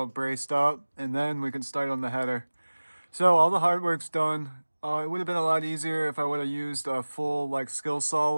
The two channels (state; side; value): inverted; both; correlation -1.00